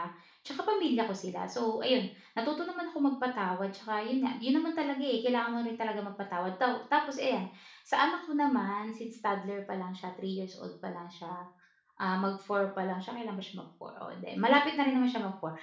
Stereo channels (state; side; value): identical; both; correlation 1.00